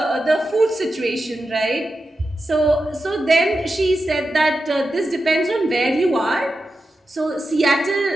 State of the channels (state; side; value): normal; both; correlation 0.90